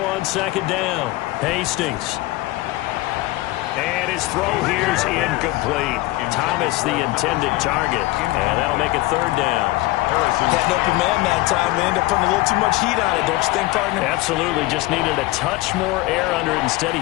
on 2nd down. Hastings. And his throw here's incomplete. Thomas the intended target. And that'll make it 3rd down. Had an open man that time. They end up putting a little too much heat on it, don't you think, partner? Absolutely. Just needed a touch more air under it. Instead, he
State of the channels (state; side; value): quieter; right; 19.1 dB